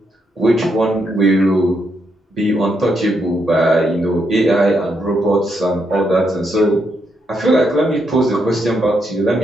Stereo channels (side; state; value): both; normal; correlation 0.79